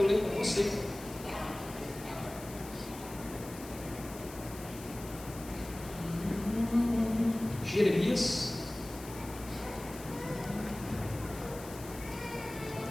ler com você. Jeremias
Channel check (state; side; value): noise; left; hiss, 15 dB below the sound